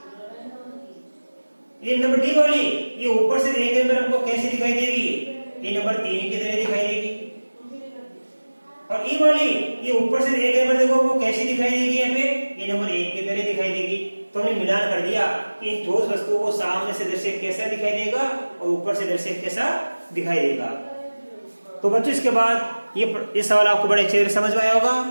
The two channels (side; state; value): both; inverted; correlation -1.00